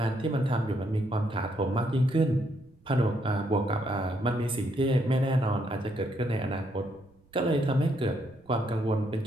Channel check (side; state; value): right; noise; rumble, 30 dB below the sound